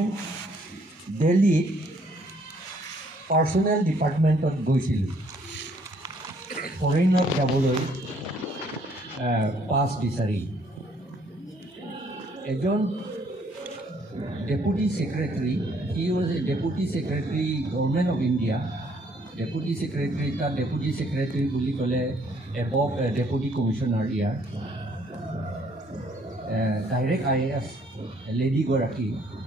দিল্লীত পাৰ্চনেল ডিপাৰ্টমেণ্টত গৈছিলোঁ ফৰেইনত যাবলৈ পাছ বিচাৰি এজন deputy secretary he was a deputy secretary government of India deputy secretary তাত ডেপুটি ছেক্ৰেটাৰী বুলি ক'লে এবভ ডেপুটি কমিশ্যনাৰ ইয়াৰ ডাইৰেক্ট IAS লেডিগৰাকী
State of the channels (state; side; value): normal; both; correlation 0.65